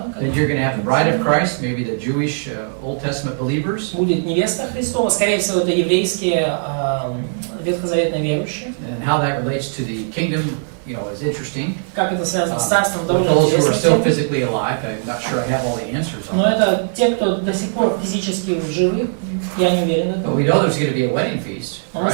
Then you're going to have the bride of Christ, maybe the Jewish Old Testament believers. Будет невеста Христова, скорее всего, это еврейские ветхозаветные верующие. And how that relates to the kingdom, you know, is interesting. Как это связано с царством, With довольно those who are still интересно. physically alive, I'm not sure I have all the answers on Но that. это те, кто до сих пор физически живы, я не уверен в But этом. we know there's going to be a wedding feast, Но мы right?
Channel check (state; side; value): silent; left; 66 dB below the other